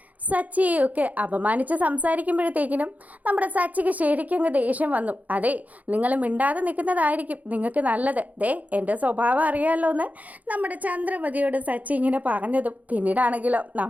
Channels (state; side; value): late; left; 0.076 ms